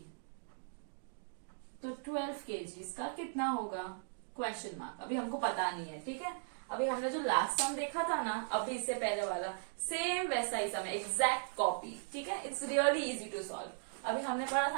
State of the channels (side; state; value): left; silent; digital silence